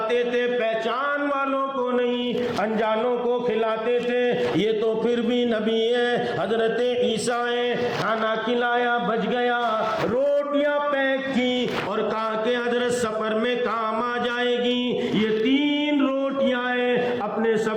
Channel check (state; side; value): identical; both; correlation 1.00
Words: تھے، پہچان والوں کو نہیں انجانوں کو کھلاتے تھے۔ یہ تو پھر بھی نبی ہے، حضرت عیسیٰ ہے۔ کھانا کھلایا، بچ گیا، روٹیاں پیک کی اور کہا کہ حضرت سفر میں کام آ جائے گی، یہ 3 روٹیاں ہیں، اپنے